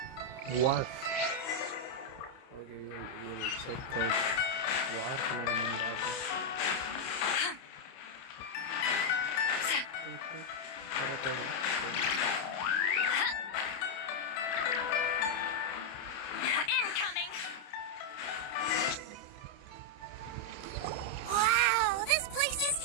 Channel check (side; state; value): right; late; 30 ms